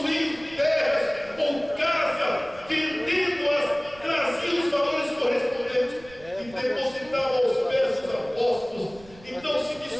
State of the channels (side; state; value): right; noise; rumble, 22 dB below the sound